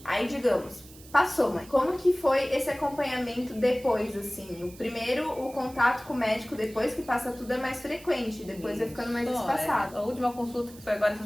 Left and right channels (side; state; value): right; noise; hiss, 21 dB below the sound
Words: Aí, digamos, passou, mãe. Como que foi esse acompanhamento depois, assim? O primeiro, o contato com o médico depois que passa tudo é mais frequente, depois vai ficando mais espaçado. A última consulta que foi agora essa